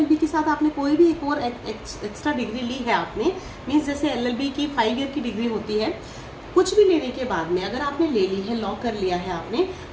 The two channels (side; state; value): both; identical; correlation 1.00